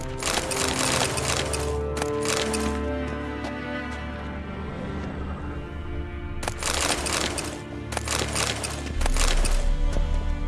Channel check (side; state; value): both; identical; correlation 1.00